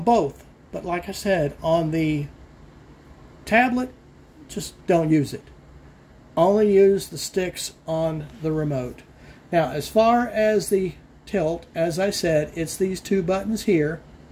both, but like I said, on the tablet, just don't use it. Only use the sticks on the remote. Now, as far as the tilt, as I said, it's these two buttons here,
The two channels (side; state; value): both; identical; correlation 1.00